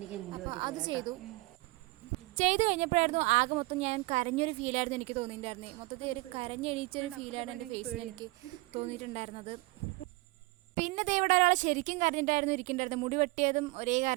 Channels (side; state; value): left; quieter; 23.2 dB